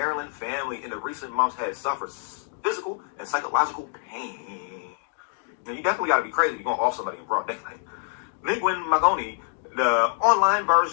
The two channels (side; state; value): right; silent; digital silence